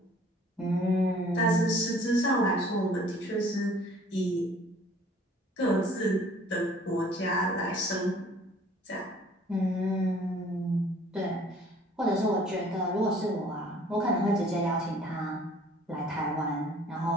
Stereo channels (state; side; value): normal; both; correlation 0.54